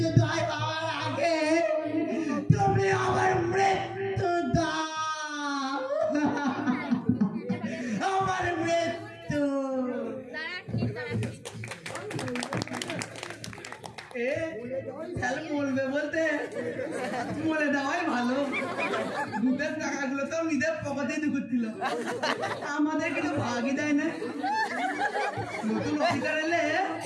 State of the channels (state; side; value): identical; both; correlation 1.00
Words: হওয়ার আগে তুমি আমার মৃত্যু দাও, আমার মৃত্যু। বলবে বলতে মরে দেওয়াই ভালো। দুধের টাকাগুলো তো নিজের পকেটেই ঢুকছিল, আমাদের কিন্তু ভাগই দেয় না। নতুন অফিসার এলে